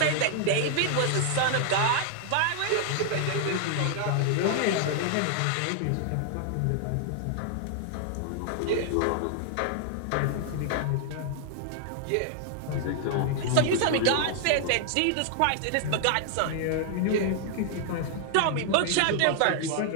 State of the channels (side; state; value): both; different; correlation -0.01